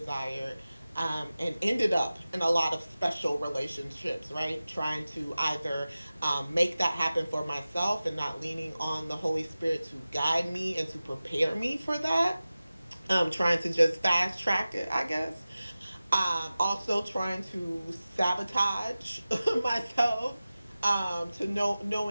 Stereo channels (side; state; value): both; inverted; correlation -0.96